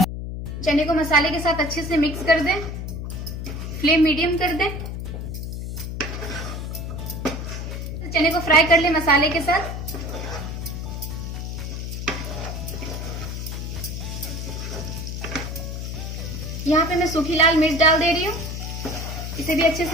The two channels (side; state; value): left; noise; hum, 6 dB below the sound